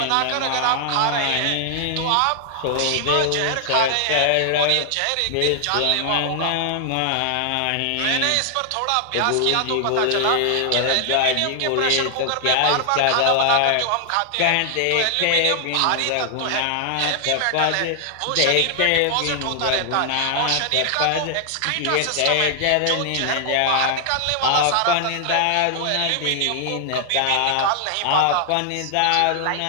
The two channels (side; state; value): both; different; correlation 0.00